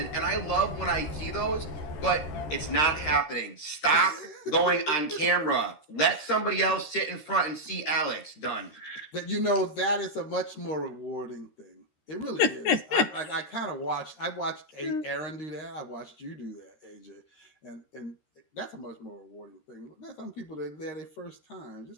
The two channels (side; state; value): right; late; 13 ms